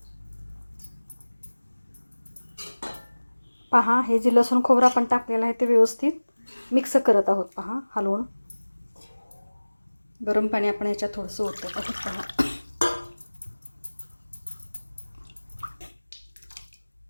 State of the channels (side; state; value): both; inverted; correlation -1.00